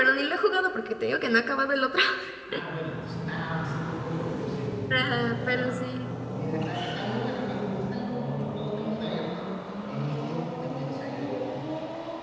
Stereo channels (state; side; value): identical; both; correlation 1.00